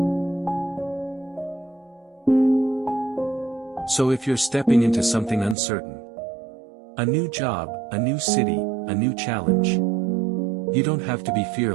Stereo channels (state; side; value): drops out; left; at 5.6 s